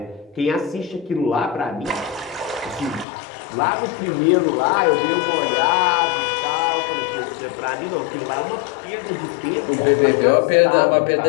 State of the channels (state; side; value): drops out; right; at 3.1 s